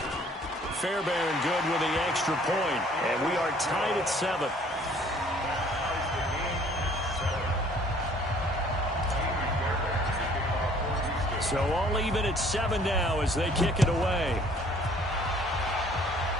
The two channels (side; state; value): both; normal; correlation 0.57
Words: Fairbairn good with the extra point, and we are tied at 7. So all even at 7 now as they kick it away.